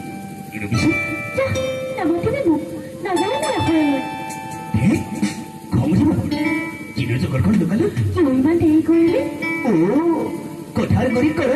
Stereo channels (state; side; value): identical; both; correlation 1.00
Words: এৰবিছো খং যাব কিনো জগৰখন লুকালো ইমান দেৰি কৰিলে কথাৰ কৰি